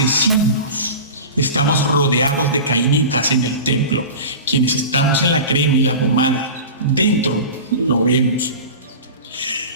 Estamos rodeados de cainitas en el templo. Quienes estamos en la crema y la pomada, dentro lo vemos.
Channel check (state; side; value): inverted; both; correlation -0.33